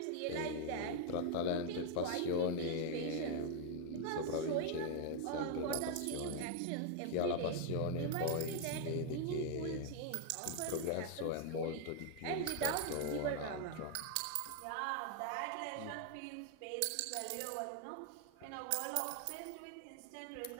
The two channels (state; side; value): different; both; correlation 0.00